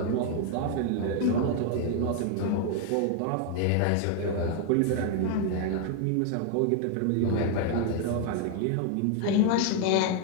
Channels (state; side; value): different; both; correlation 0.00